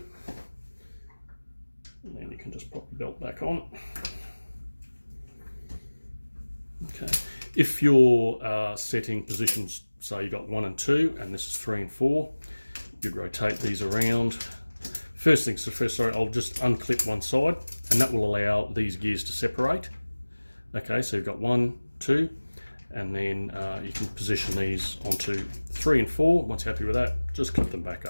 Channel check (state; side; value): inverted; both; correlation -1.00